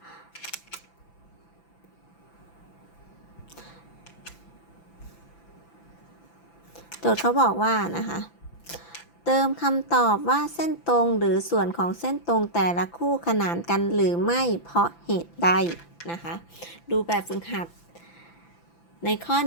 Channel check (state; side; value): late; right; 5.9 ms